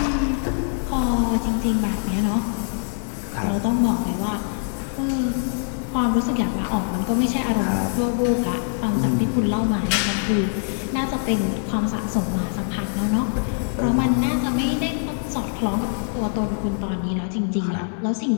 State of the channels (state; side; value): silent; right; 58 dB below the other